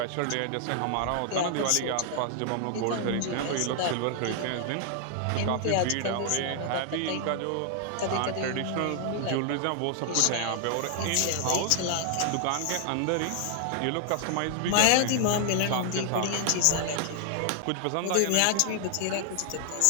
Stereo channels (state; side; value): different; both; correlation 0.00